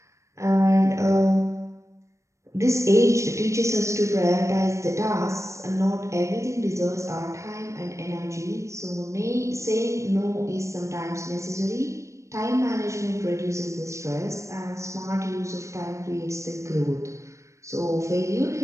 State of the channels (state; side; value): late; left; 0.15 ms